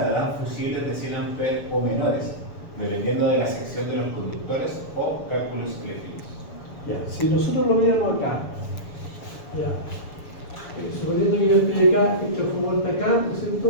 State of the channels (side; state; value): right; late; 7.0 ms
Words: fusibles de 100 amperes o menores, dependiendo de la sección de los conductores o cálculos eléctricos. Ya, si nosotros lo viéramos acá, ya, suponiendo que yo estoy acá, el transformador está acá, ¿no es cierto?